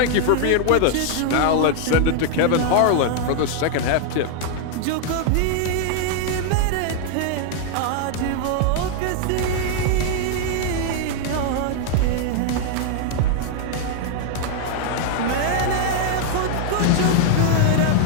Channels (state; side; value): different; both; correlation 0.00